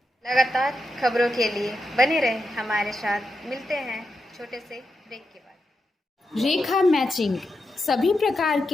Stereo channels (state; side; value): normal; both; correlation 0.87